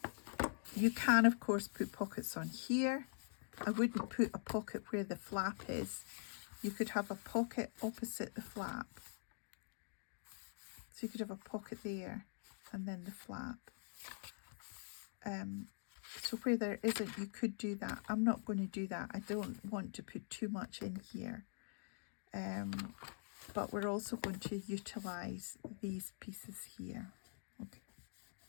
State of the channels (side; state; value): right; silent; digital silence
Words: you can of course put pockets on here. I wouldn't put a pocket where the flap is. You could have a pocket opposite the flap. So you could have a pocket there and then the flap. So where there isn't, you could do that. I'm not going to do that. I don't want to put too much in here. But we're also going to utilize these pieces here. Okay.